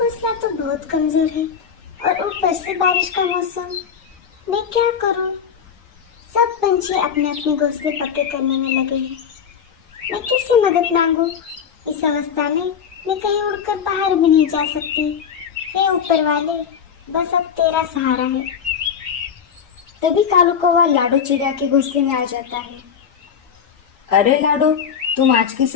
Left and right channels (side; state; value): right; quieter; 7.4 dB